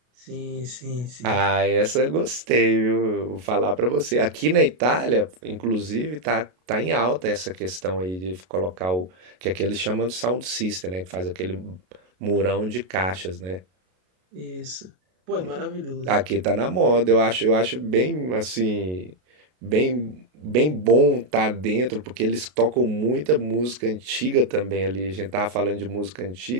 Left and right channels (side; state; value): left; late; 33 ms